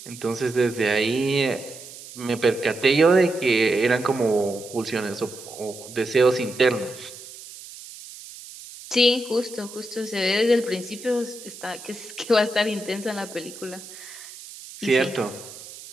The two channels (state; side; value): noise; right; hiss, 15 dB below the sound